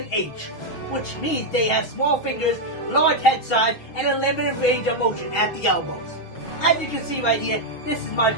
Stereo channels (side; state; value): right; late; 6.5 ms